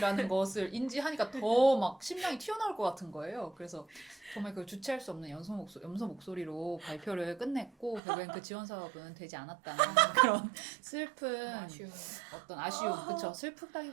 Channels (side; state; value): left; drops out; at 8.0 s